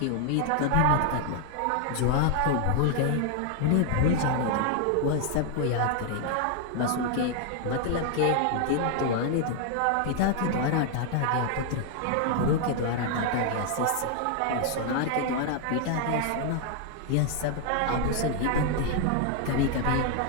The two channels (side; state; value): both; different; correlation 0.00